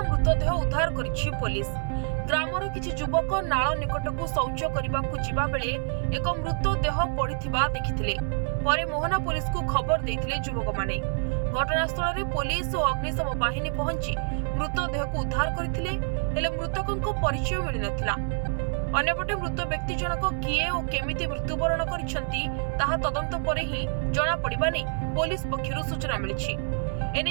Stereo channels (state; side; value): silent; left; 60 dB below the other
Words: ମୃତଦେହ ଉଦ୍ଧାର କରିଛି ପୋଲିସ। ଗ୍ରାମର କିଛି ଯୁବକ ନାଳ ନିକଟକୁ ଶୌଚ କରିବାକୁ ଯିବା ବେଳେ ଏକ ମୃତଦେହ ପଡ଼ିଥିବା ଦେଖିଥିଲେ। ପରେ ମୋହନା ପୋଲିସକୁ ଖବର ଦେଇଥିଲେ ଯୁବକମାନେ। ଘଟଣାସ୍ଥଳରେ ପୋଲିସ ଓ ଅଗ୍ନିଶମ ବାହିନୀ ପହଞ୍ଚି ମୃତଦେହକୁ ଉଦ୍ଧାର କରିଥିଲେ, ହେଲେ ମୃତକଙ୍କ ପରିଚୟ ମିଳିନଥିଲା। ଅନ୍ୟପଟେ ମୃତ ବ୍ୟକ୍ତି ଜଣକ କିଏ ଓ କେମିତି ମୃତ୍ୟୁବରଣ କରିଛନ୍ତି ତାହା ତଦନ୍ତ ପରେ ହିଁ ଜଣାପଡ଼ିବା ନେଇ ପୋଲିସ ପକ୍ଷରୁ ସୂଚନା ମିଳିଛି।